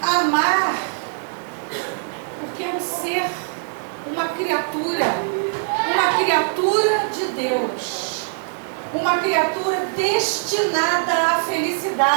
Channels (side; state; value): left; silent; 64 dB below the other